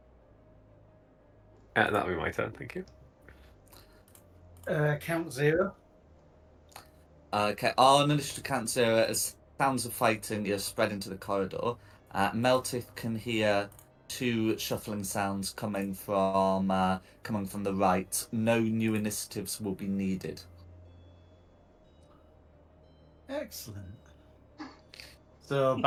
That'll be my turn, thank you. Count 0. Okay, on initiative count 0, as sounds of fighting are spread into the corridor, Meltith can hear 2 shuffling sounds coming from the right. No new initiatives will be needed. Excellent. So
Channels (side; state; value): both; identical; correlation 1.00